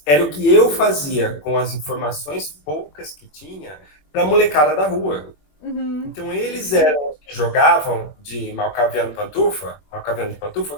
era o que eu fazia com as informações poucas que tinha para a molecada da rua. Uhum. Então eles eram os que jogavam de Malcaviano Malcaviano de Pantufa,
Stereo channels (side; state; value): right; late; 21 ms